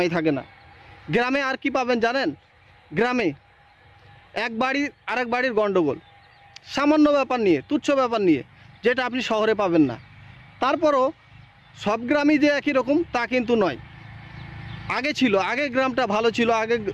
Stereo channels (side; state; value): both; identical; correlation 1.00